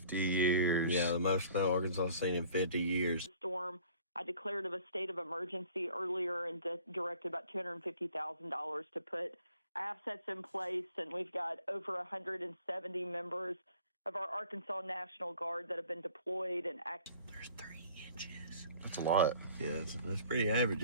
years. Yeah, the most snow Arkansas has seen in 50 years. Storm. I declared of a state of emergency earlier and directed about $250,000 to put assets in place, and we've got over 170 members of our Arkansas National Guard that have been deployed and active. There's 3 inches. That's a lot. Yeah, that's pretty average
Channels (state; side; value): inverted; both; correlation -0.51